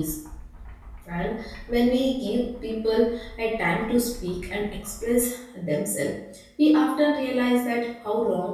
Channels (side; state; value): both; identical; correlation 1.00